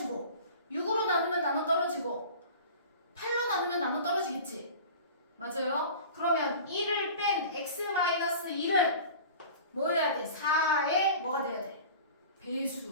6으로 됐어요? 그러면 1을 뺀 x-1은 뭐여야 돼? 4의 뭐가 돼야 돼?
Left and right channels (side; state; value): both; inverted; correlation -0.39